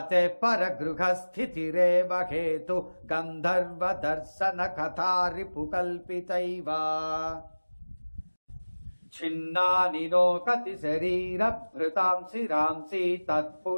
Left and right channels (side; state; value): both; inverted; correlation -1.00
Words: परगृहस्थितिरेव हेतु गन्धर्वदर्शन कथा रिपुकल्पितैव छिन्नानि नो कति शरीरभृतां शिरांसि